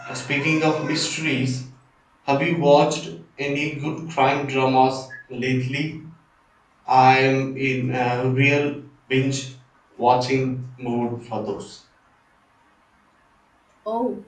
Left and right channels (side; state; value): both; identical; correlation 1.00